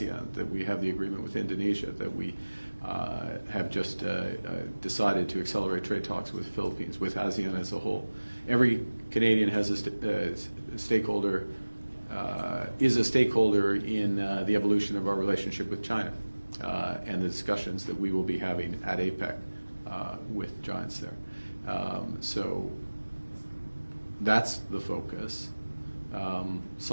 that we have the agreement with Indonesia, that we have just decided to accelerate trade talks with the Philippines, with ASEAN as a whole. Every Canadian has a stakeholder, is a stakeholder in the evolution of our relationship with China and the discussions that we will be having at APEC with giants there. So that's the focus,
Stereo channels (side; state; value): both; inverted; correlation -1.00